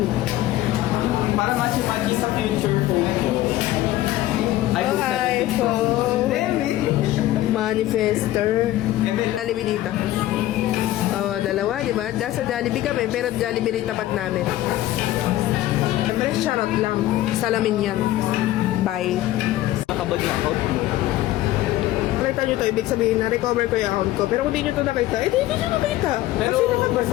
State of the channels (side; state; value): right; quieter; 15.1 dB